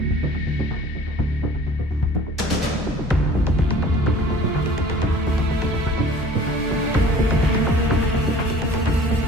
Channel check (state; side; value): normal; both; correlation 0.47